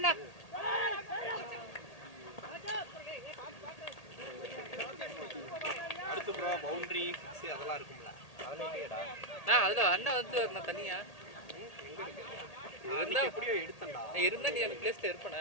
அதெல்லாம் இருக்கும்ல. அதெல்லாம் இல்லையடா. அதுதான் அண்ணன் வந்து நான் தனியா இருந்தா எப்படியோ எடுத்தேன்டா. இருந்தா நீ அந்த பிளேஸ்ல இருப்பேனே.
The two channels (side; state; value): right; late; 1.8 ms